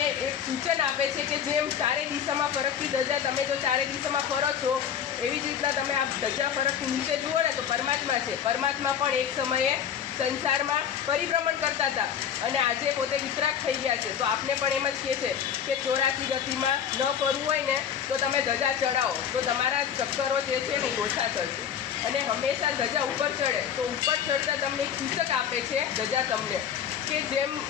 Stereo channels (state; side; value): quieter; right; 8.6 dB